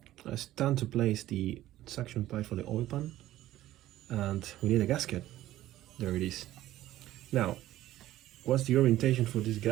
It's time to place the suction pipe for the oil pan, and we need a gasket. There it is. Now, what's the orientation for this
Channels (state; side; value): quieter; left; 14.5 dB